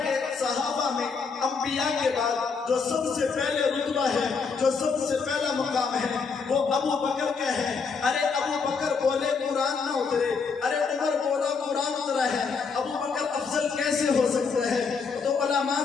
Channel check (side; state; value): right; quieter; 5.2 dB